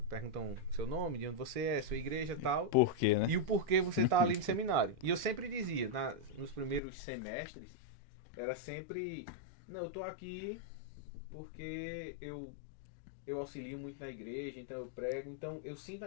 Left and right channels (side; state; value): right; drops out; at 6.8 s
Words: Perguntam seu nome, de onde você é, sua igreja e tal. Por quê, né? E o porquê você tá ali no seminário. E eu sempre dizia, nos primeiros semestres, era sempre, não, eu tô aqui porque eu auxilio muito na igreja, então eu prego, então eu sinto